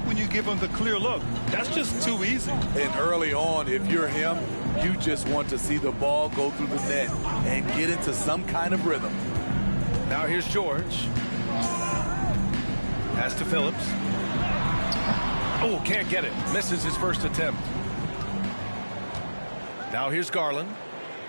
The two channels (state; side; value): inverted; both; correlation -1.00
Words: when you give them the clear look? That's just too easy. And early on, if you're him, you just want to see the ball go through the net and get into some kind of rhythm. Now here's George. Pass to Phillips. Oh, can't get it. Misses his first attempt. Now here's Garland.